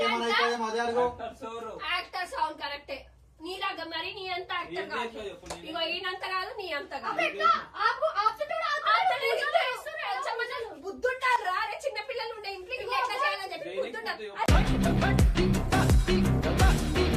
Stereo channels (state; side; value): identical; both; correlation 1.00